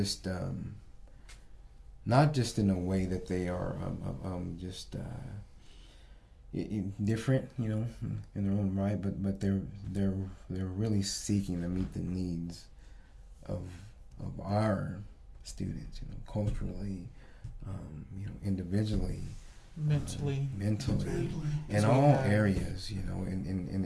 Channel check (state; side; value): identical; both; correlation 1.00